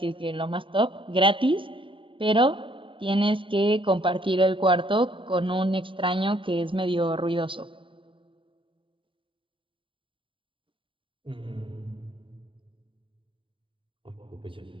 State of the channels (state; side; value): late; left; 0.25 ms